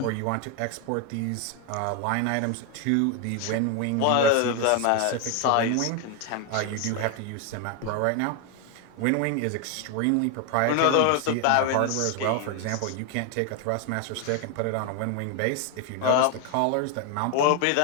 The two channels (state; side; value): different; both; correlation 0.01